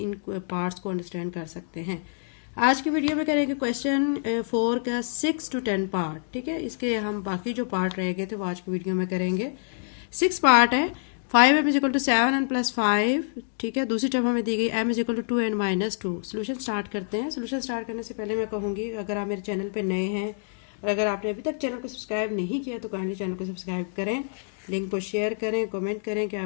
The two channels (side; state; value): right; silent; digital silence